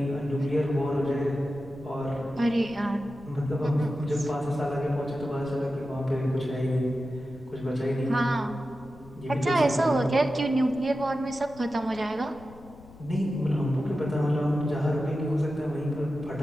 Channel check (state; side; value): noise; left; rumble, 21 dB below the sound